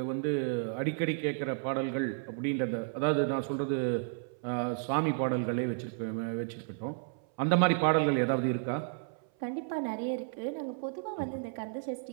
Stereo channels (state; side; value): silent; left; 56 dB below the other